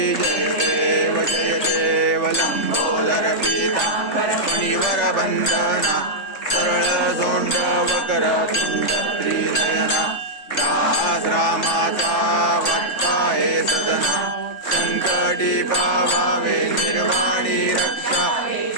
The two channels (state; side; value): late; right; 3.4 ms